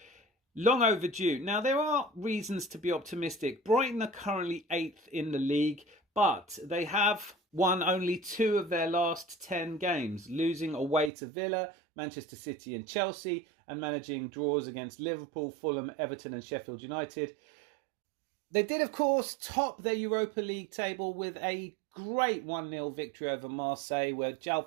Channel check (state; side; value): drops out; left; at 11.1 s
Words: Long overdue. Now, there are reasons to be optimistic. Brighton are currently 8th in the league, but they have won only 2 of their last 10 games, losing away to Villa, Manchester City and Chelsea, and managing draws against Liverpool, Fulham, Everton and Sheffield United. They did, of course, top their Europa League table with a great 1-0 victory over Marseille, where